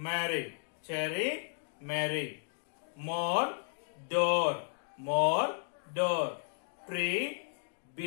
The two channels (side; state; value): right; silent; digital silence